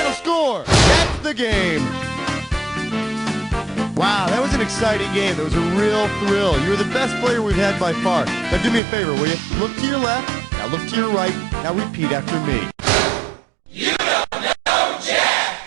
score. That's the game. Wow, that was an exciting game. That was a real thrill. You were the best player we've had by far. Now do me a favor, will you? Look to your left. Now look to your right. Now repeat after me. You don't know Jack!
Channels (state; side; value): drops out; left; at 8.8 s